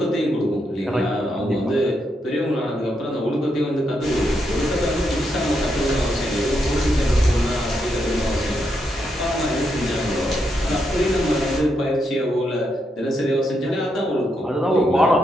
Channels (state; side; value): normal; both; correlation 0.81